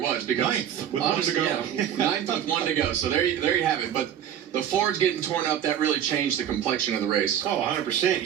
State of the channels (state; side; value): quieter; left; 9.8 dB